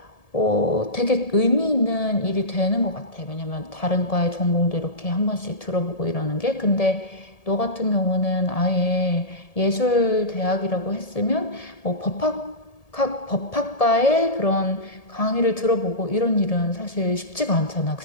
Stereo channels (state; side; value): late; right; 1.7 ms